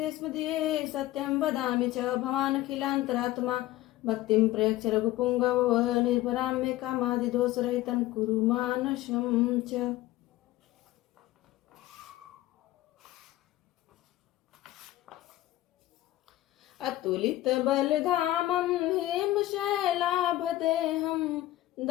सत्यं वदामि च भवानखिलान्तरात्मा भक्तिं प्रयच्छ रघुपुङ्गव निर्भरां मे कामादिदोषरहितं कुरु मानसं च। अतुलित बलधामं हेमशैलाभदेहं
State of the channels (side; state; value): right; quieter; 15.8 dB